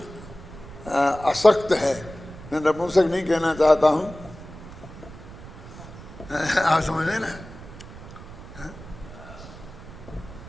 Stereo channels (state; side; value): noise; right; rumble, 15 dB below the sound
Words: असक्त है। मैं नपुंसक नहीं कहना चाहता हूँ, आप समझे ना,